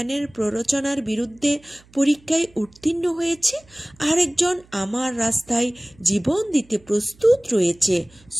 প্ররোচনার বিরুদ্ধে পরীক্ষায় উত্তীর্ণ হয়েছে, আরেকজন আমার রাস্তায় জীবন দিতে প্রস্তুত রয়েছে।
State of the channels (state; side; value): noise; right; hum, 28 dB below the sound